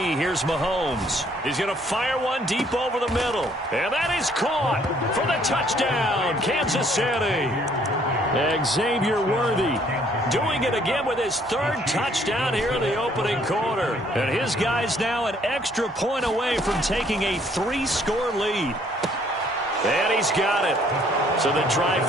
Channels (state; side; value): normal; both; correlation 0.63